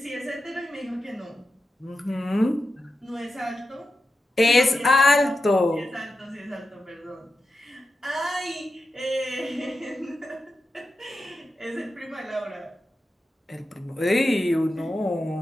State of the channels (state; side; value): normal; both; correlation 0.90